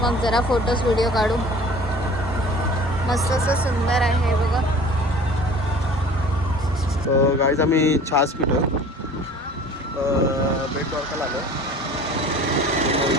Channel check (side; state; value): both; normal; correlation 0.45